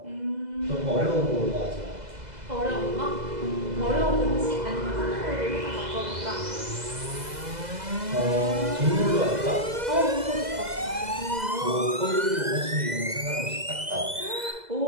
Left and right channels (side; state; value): left; late; 2.0 ms